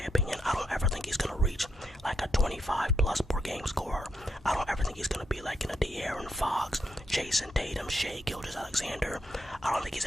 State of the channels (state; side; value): normal; both; correlation 0.80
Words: opinion, I don't ever think he's going to reach like a 25+ per game scorer. I don't ever think he's going to be like in a De'Aaron Fox, Jason Tatum, Shea Gilgeous-Alexander. I don't think he's